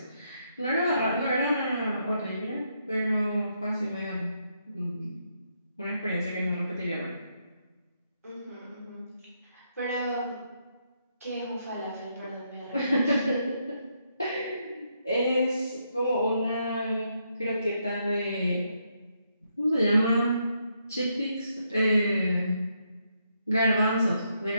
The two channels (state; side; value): inverted; both; correlation -0.78